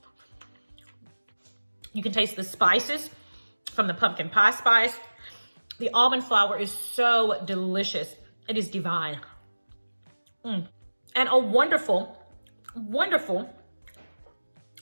You can taste the spices from the pumpkin pie spice. The almond flour is so delicious. It is divine. And a wonderful, wonderful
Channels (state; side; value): inverted; both; correlation -1.00